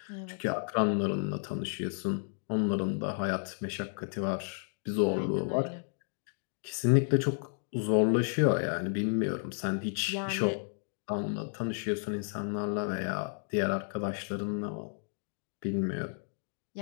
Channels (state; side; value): silent; right; 56 dB below the other